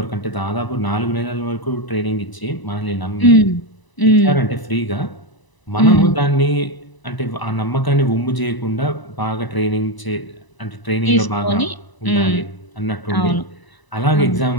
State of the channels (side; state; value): right; late; 1.0 ms